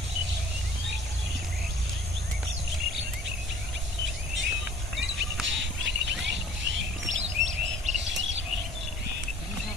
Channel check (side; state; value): both; normal; correlation 0.51